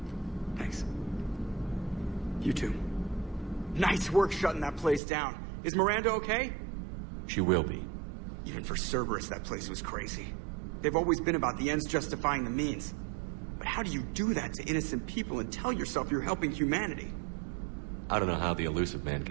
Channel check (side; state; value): left; drops out; at 5.0 s